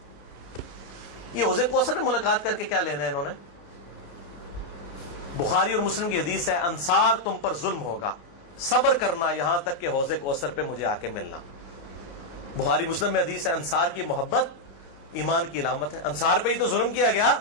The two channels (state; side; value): late; right; 29 ms